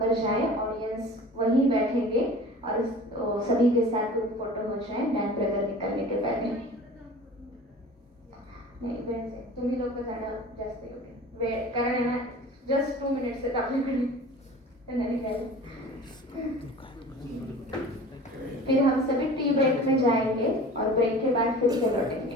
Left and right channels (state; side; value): normal; both; correlation 0.41